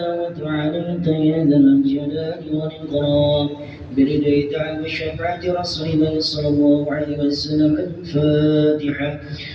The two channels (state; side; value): identical; both; correlation 1.00